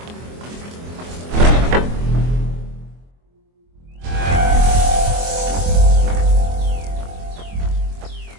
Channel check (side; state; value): left; late; 24 ms